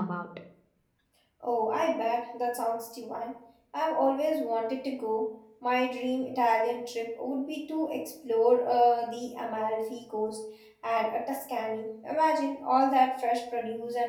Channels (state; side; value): identical; both; correlation 1.00